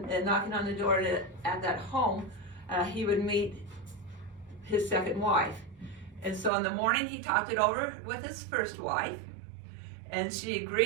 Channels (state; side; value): drops out; left; at 6.5 s